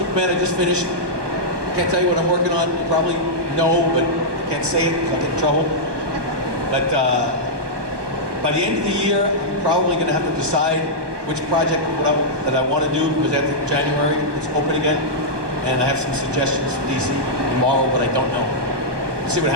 I just finished. Can't tell you what I'm working on. You probably know, but can't say it because I'll get in trouble. But by the end of the year, I'm probably going to have to decide which project that I want to do, because after January, it's open again. And I have some suggestions for DC tomorrow, but I don't know. We'll see what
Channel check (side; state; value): left; late; 1.2 ms